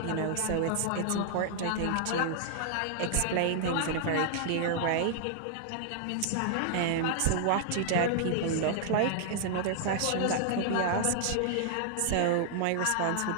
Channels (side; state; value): both; different; correlation -0.01